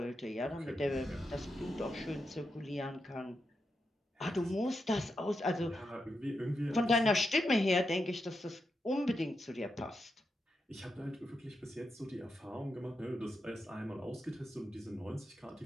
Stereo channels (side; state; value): both; normal; correlation 0.86